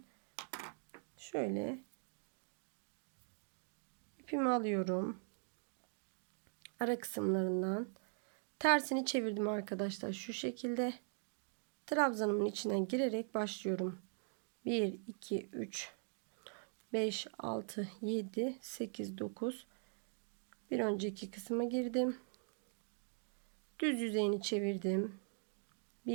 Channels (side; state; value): left; silent; 50 dB below the other